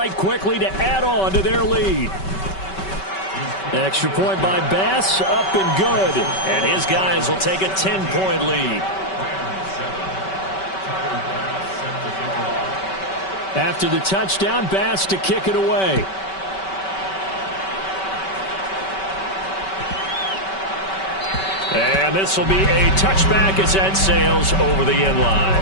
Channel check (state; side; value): late; right; 5.2 ms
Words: quickly to add on to their lead. Extra point by Bass, up and good. And his guys will take a 10-point lead. After the touchdown, Bass to kick it away. And this will be a touchback as that sails over the end line.